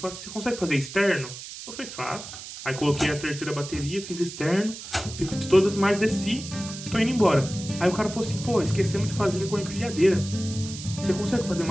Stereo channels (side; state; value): right; noise; hiss, 11 dB below the sound